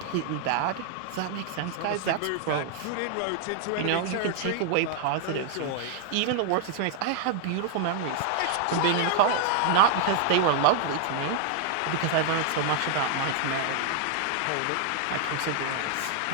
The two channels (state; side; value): different; both; correlation -0.01